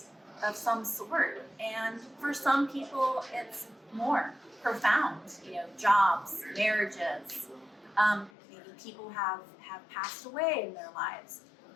of some sort. And for some people, it's more profound. Jobs, marriages, maybe people have passed away in their lives.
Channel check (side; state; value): right; drops out; at 8.3 s